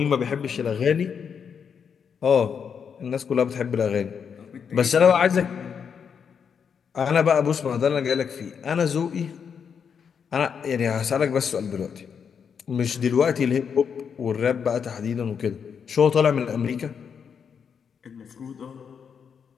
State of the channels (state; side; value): quieter; right; 6.9 dB